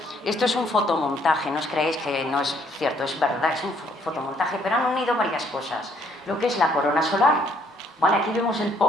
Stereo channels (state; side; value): normal; both; correlation 0.66